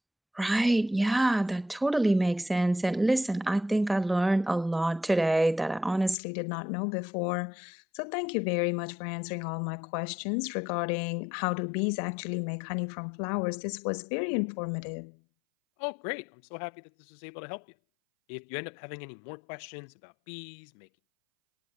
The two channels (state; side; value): drops out; right; at 6.2 s